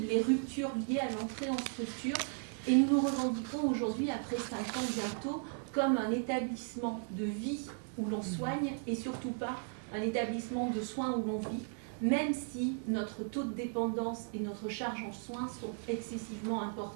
les ruptures liées à l'entrée en structure. Et nous nous revendiquons aujourd'hui, après 5 ans bientôt, comme un établissement de vie où l'on soigne et surtout pas un établissement de soins où l'on vit, même si notre taux de dépendance et notre charge en soins sont excessivement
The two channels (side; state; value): left; silent; 54 dB below the other